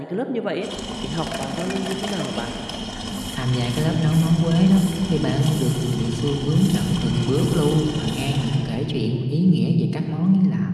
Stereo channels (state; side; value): identical; both; correlation 1.00